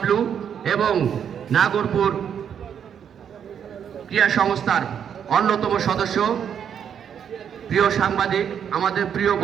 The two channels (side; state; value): left; quieter; 8.3 dB